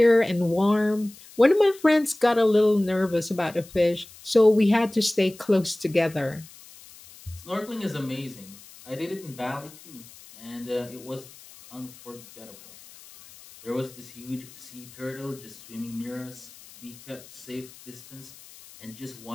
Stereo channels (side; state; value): left; noise; hiss, 21 dB below the sound